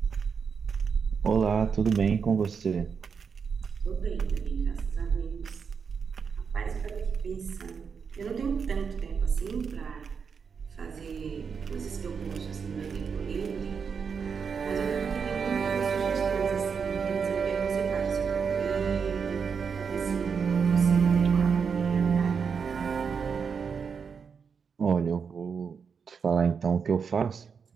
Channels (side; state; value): left; quieter; 6.1 dB